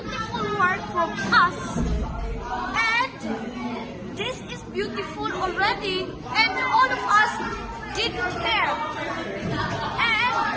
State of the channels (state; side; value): identical; both; correlation 1.00